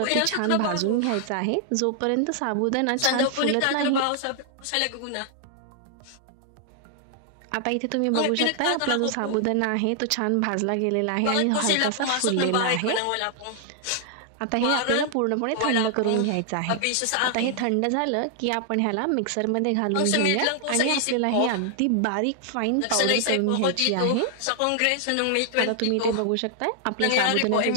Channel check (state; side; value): different; both; correlation 0.00